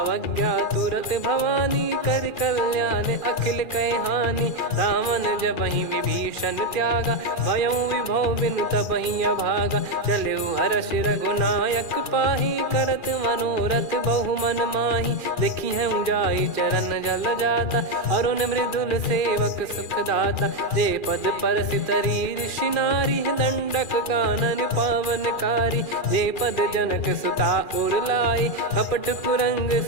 तुरत भवानी, कर कल्याण अखिल कह हानि, रावण जबहि विभीषण त्यागा, भयउ विभव बिनु तबहि अभागा, चलऊ हर्ष रघुनायक पाही, करत मनोरथ बहु मन माही, देखी हूँ जाई चरण जल जाता, अरुण मृदुल सेवक सुखदाता, जे पद पर सितरी ऋषि नारी, दंडक कानन पावनकारी, जे पद जनक सुता उर लाई, कपट कुरंग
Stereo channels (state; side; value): late; right; 2.4 ms